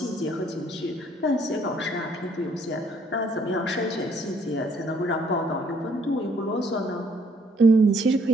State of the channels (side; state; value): both; normal; correlation 0.65